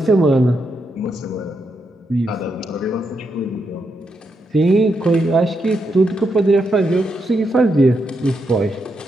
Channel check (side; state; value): both; normal; correlation 0.82